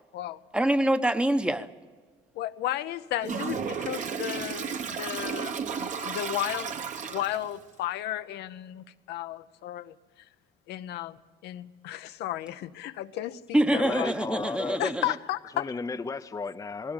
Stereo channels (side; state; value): both; normal; correlation 0.55